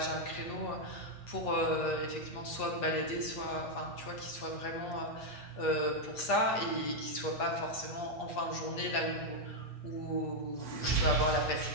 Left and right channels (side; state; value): right; late; 8.4 ms